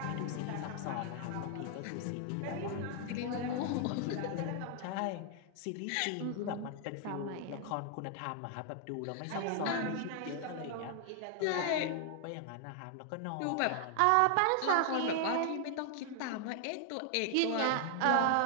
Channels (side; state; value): both; different; correlation 0.00